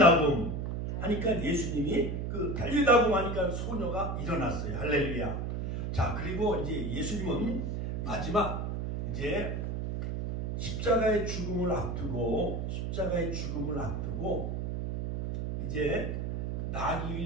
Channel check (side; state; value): right; noise; hum, 2 dB below the sound